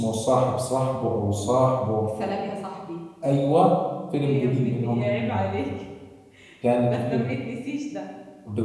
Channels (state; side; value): identical; both; correlation 1.00